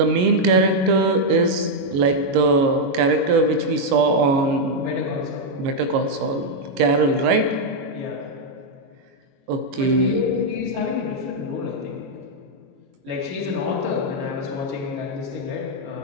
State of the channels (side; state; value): left; late; 22 ms